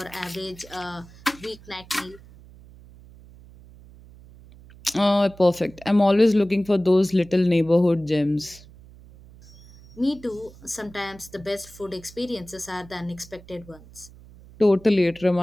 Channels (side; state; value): right; noise; hum, 22 dB below the sound